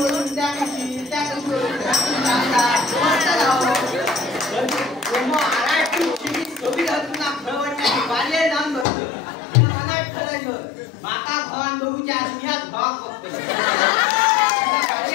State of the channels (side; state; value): right; drops out; at 8.8 s